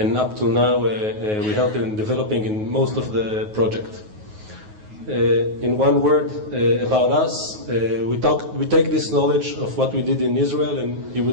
up to now, we help in developing in most of the project. In one word about us, we take this knowledge of what we did in Israel, and you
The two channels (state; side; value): late; left; 9.4 ms